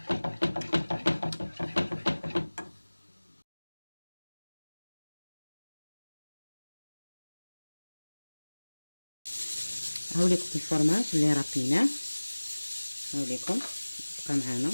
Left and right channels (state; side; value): inverted; both; correlation -1.00